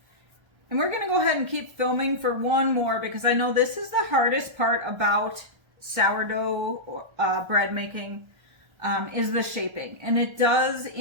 And we're going to go ahead and keep filming for one more because I know this is the hardest part about sourdough bread making is the shaping, and it does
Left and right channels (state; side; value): late; left; 1.3 ms